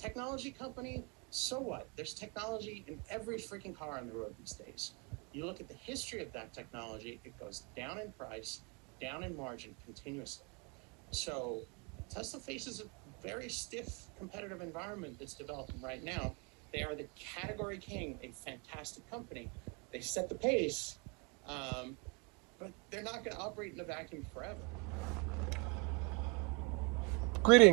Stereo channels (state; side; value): quieter; left; 29.1 dB